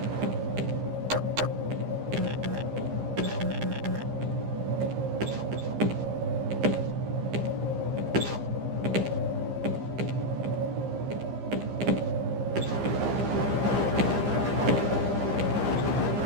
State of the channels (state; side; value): late; left; 15 ms